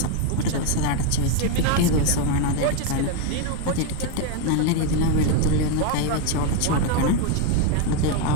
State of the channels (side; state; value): both; different; correlation 0.01